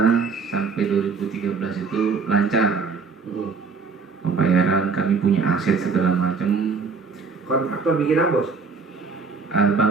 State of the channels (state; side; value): quieter; left; 4.9 dB